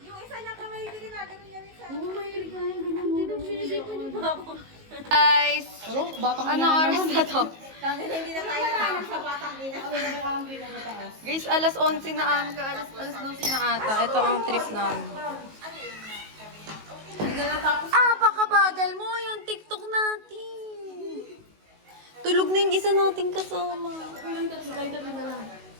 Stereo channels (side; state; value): left; late; 19 ms